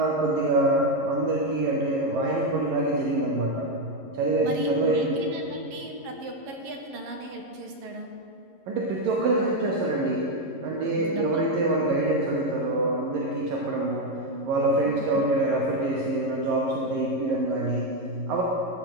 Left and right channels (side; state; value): left; late; 11 ms